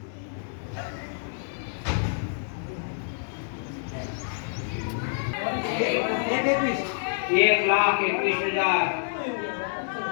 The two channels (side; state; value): right; silent; 60 dB below the other